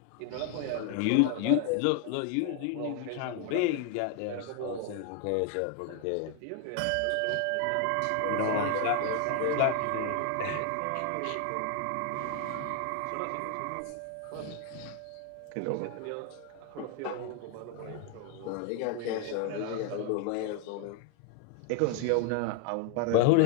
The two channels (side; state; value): both; different; correlation 0.01